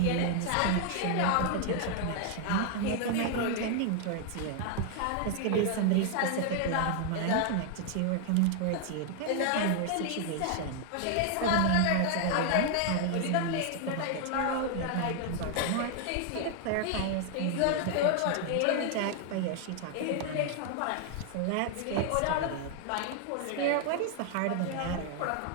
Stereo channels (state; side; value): different; both; correlation 0.00